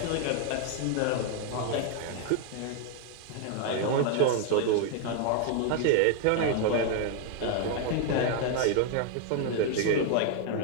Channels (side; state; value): both; different; correlation 0.00